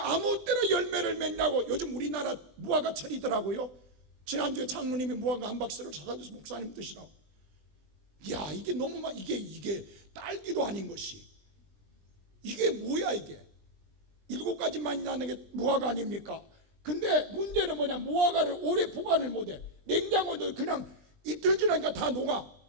아무 때나 열매를 맺냐고. 요즘 우리나라 무화과철이더라고요. 지난주에 장로님이 무화과 한 박스를 사다 줘서 목사님 드시라고. 야, 이게 너무 막 이게 딸기도 아닌 것이, 이게 뭐야 이게. 7가지만이 나는 게 무화과 아닙니까? 근데 문제는 뭐냐, 무화과를 오래 보관을 못해. 냉장고에 그냥 이틀 지나니까 다 녹아.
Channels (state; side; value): late; left; 20 ms